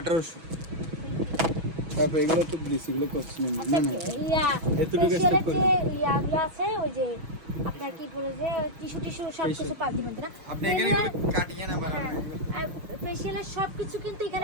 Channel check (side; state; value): left; late; 6.1 ms